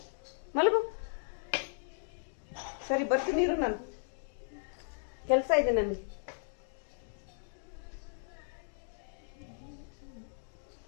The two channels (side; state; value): right; silent; digital silence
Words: ಮಲಗು. ಸರಿ ಬರ್ತೀನಿ ಇರು, ನಾನು ಕೆಲಸ ಇದೆ ನನಗೆ.